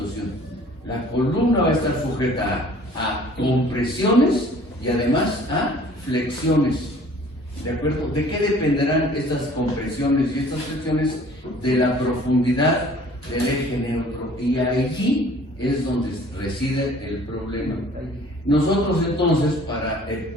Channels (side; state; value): both; normal; correlation 0.52